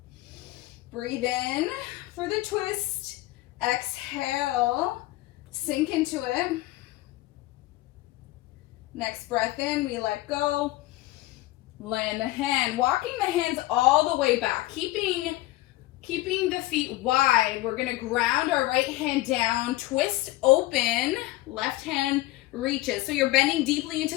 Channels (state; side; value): quieter; right; 17.7 dB